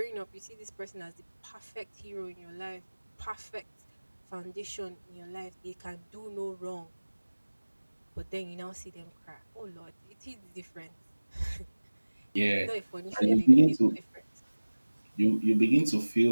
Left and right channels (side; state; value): both; inverted; correlation -1.00